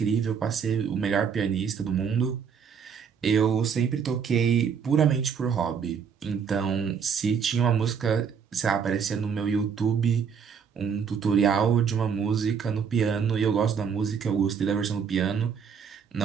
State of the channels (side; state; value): left; quieter; 6.8 dB